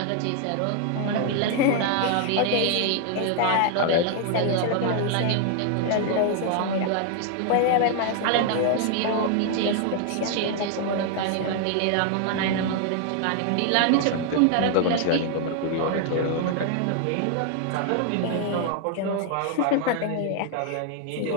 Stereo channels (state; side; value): different; both; correlation 0.00